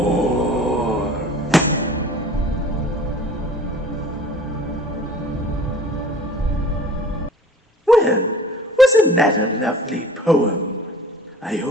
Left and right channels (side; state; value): both; normal; correlation 0.46